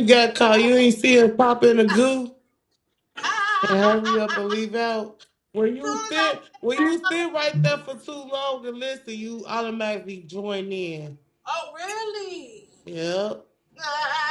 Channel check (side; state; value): both; identical; correlation 1.00